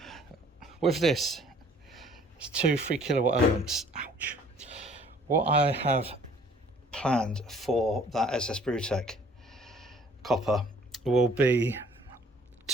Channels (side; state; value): both; normal; correlation 0.56